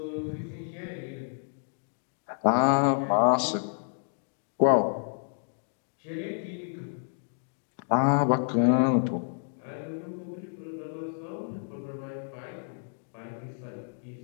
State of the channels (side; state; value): right; silent; digital silence